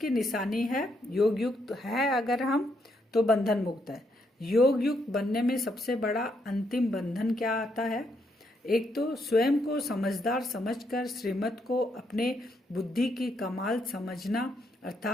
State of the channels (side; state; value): both; normal; correlation 0.76